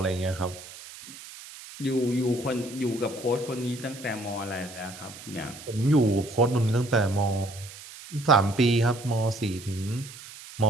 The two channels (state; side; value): noise; right; hiss, 16 dB below the sound